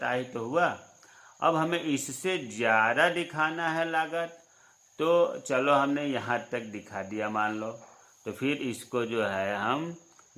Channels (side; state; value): both; identical; correlation 1.00